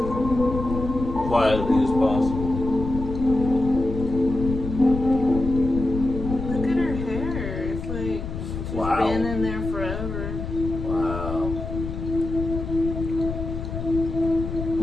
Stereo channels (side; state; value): left; noise; rumble, 6 dB below the sound